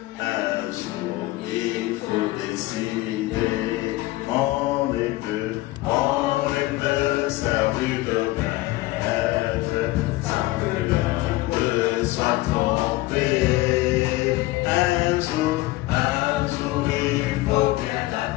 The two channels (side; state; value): right; quieter; 19.0 dB